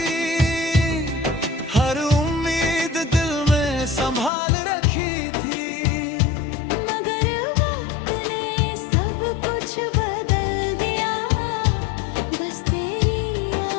हर उम्मीद दिल में संभाल रखी थी। मगर वक्त ने सब कुछ बदल दिया, बस तेरी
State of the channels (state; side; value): drops out; right; at 4.3 s